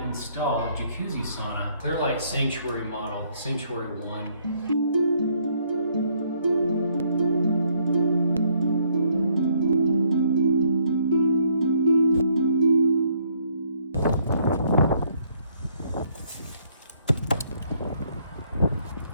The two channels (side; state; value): both; inverted; correlation -0.68